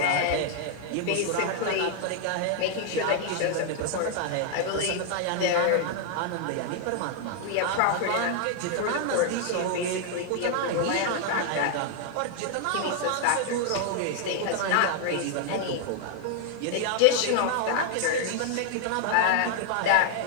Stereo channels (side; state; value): both; different; correlation 0.00